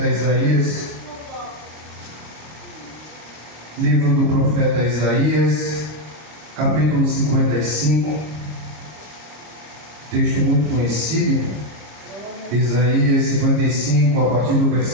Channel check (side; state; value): left; late; 26 ms